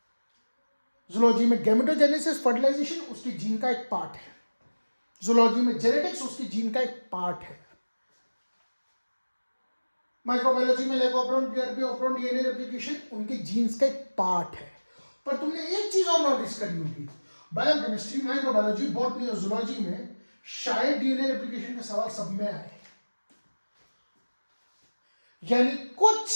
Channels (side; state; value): both; inverted; correlation -1.00